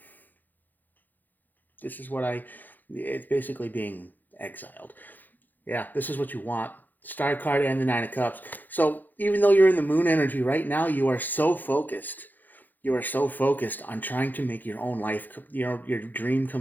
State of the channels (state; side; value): late; right; 0.086 ms